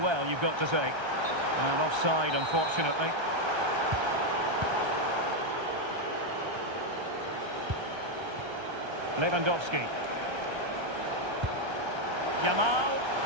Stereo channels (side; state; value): left; late; 1.3 ms